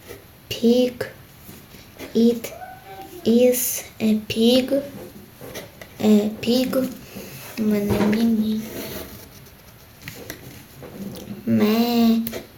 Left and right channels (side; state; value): both; identical; correlation 1.00